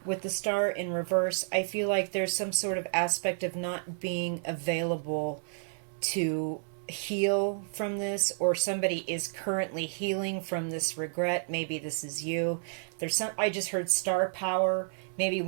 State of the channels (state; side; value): silent; left; 57 dB below the other